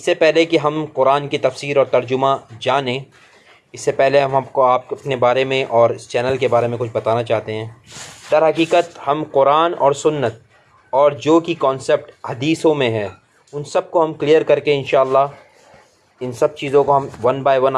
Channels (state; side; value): identical; both; correlation 1.00